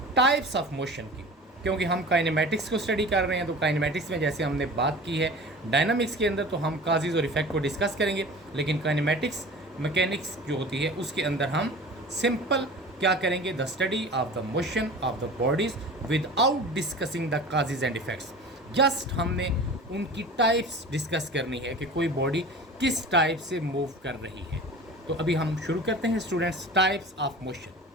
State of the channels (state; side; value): normal; both; correlation 0.38